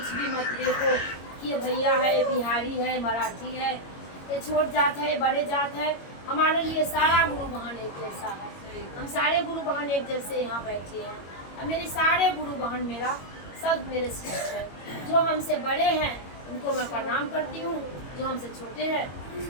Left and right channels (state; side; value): late; right; 21 ms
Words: भी मत देखो कि ये भैया है, ये बिहारी है, मराठी है, ये छोट जात है, बड़े जात है। हमारे लिए सारा गुरु बहन एक जैसा है। हम सारे गुरु बहन एक जैसे यहाँ बैठे हैं और मेरे सारे गुरु बहन मेरा सब मेरे शिष्य है। जो हमसे बड़े हैं उनको मैं प्रणाम करती हूँ, जो हमसे छोटे हैं